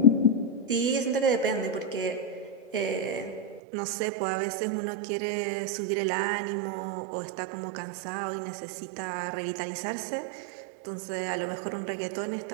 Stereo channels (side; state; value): left; drops out; at 3.6 s